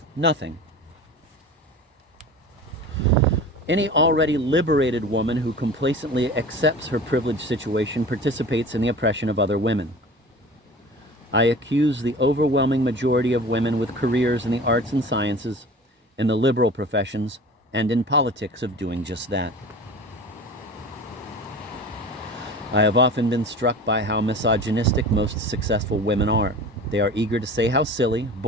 Nothing. Any already liberated woman who complacently accepts her privileged situation participates in the oppression of other women. I accuse the overwhelming majority of women with careers in the arts and sciences, in the liberal professions, and in politics of doing just that. I have often been struck by how misogynistic most successful women are. They are eager to say how silly,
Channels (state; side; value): normal; both; correlation 0.37